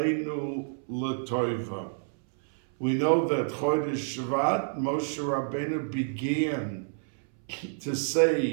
L'Toiva. We know that Chodesh Shvat, Moshe Rabbeinu began to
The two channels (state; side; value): silent; left; 59 dB below the other